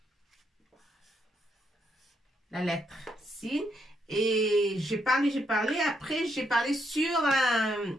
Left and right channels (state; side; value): normal; both; correlation 0.77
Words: la lettre sin, et j'ai parlé, après j'ai parlé sur